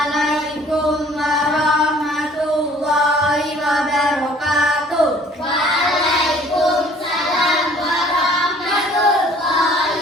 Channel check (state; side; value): normal; both; correlation 0.54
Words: warahmatullahi wabarakatuh. Waalaikumsalam